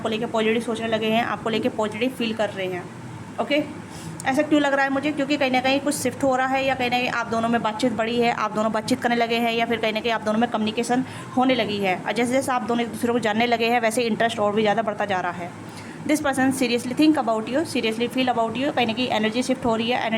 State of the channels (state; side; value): identical; both; correlation 1.00